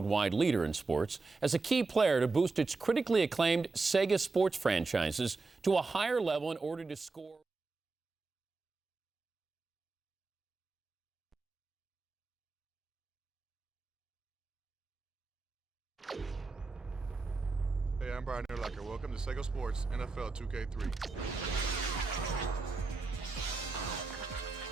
leader in sports, as a key player to boost its critically acclaimed Sega Sports franchises to a higher level in order to score. Hey, I'm Brian Urlacher. Welcome to Sega Sports NFL 2K3.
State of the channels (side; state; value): left; quieter; 3.9 dB